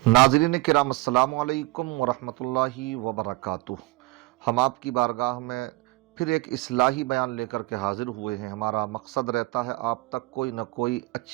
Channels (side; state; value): left; quieter; 20.3 dB